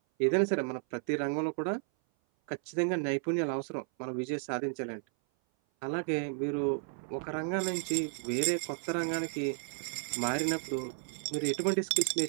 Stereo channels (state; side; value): silent; left; 56 dB below the other